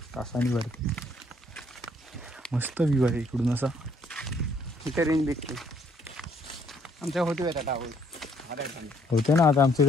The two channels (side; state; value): both; normal; correlation 0.66